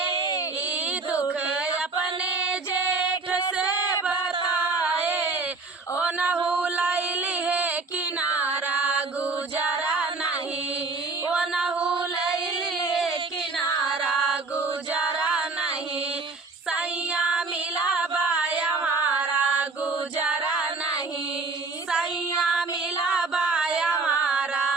दुख अपने जेठ से बताए, ओ नहु लैली है किनारा गुजारा नहीं, ओ नहु लैली है किनारा गुजारा नहीं, सैया मिला बाया हमारा गुजारा नहीं, सैया मिला बाया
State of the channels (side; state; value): left; quieter; 3.9 dB